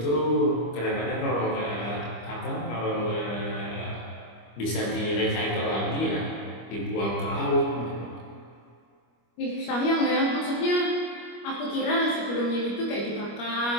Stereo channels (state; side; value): late; right; 25 ms